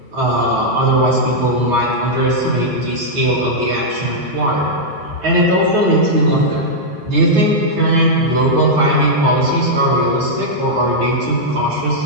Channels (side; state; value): left; late; 9.3 ms